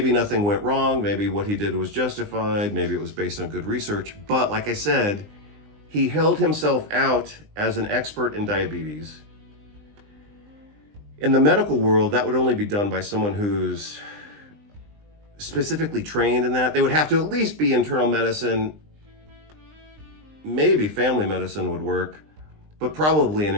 nothing went wrong. Maybe what he did was justified. Maybe it was based on good research. But like I said, he held himself out as an expert in diabetes. In the medical world, that would only be done by someone who's specifically trained in that. They would have to at least be internal medicine. Maybe family medicine would work, but probably an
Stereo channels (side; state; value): left; late; 20 ms